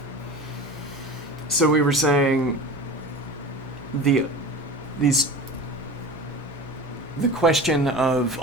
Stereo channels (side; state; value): both; normal; correlation 0.33